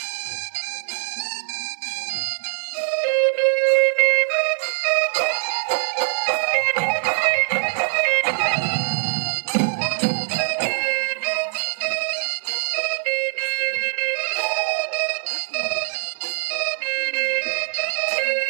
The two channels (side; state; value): left; silent; digital silence